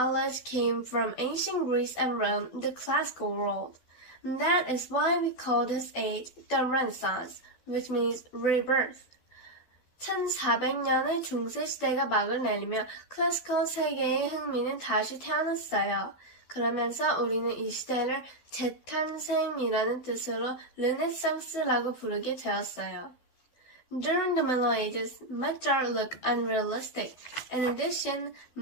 came from ancient Greece and Rome, the classical world. That is why we call this age the Renaissance, which means rebirth. 1400년의 중세시대가 막을 내리며 클래시컬 세계의 흥미는 다시 태어났어요. 그러면서 우리는 이 시대를 재탄생이라는 뜻으로 르네상스라고 부르게 되었어요. During the Middle Ages, much art looked unrealistic. In addition,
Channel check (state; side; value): late; right; 12 ms